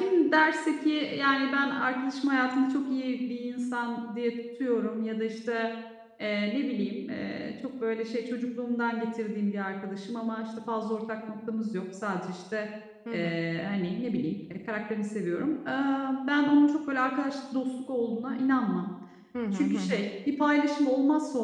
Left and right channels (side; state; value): both; identical; correlation 1.00